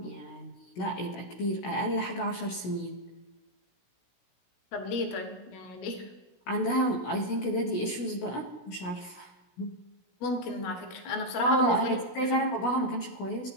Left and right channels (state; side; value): late; right; 16 ms